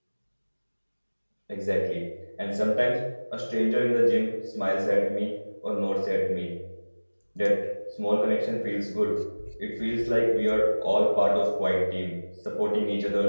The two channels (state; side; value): inverted; both; correlation -1.00